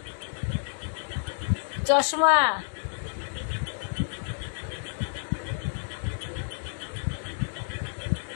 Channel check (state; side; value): silent; right; digital silence